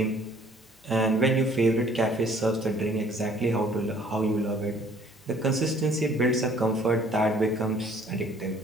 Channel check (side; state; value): both; normal; correlation 0.58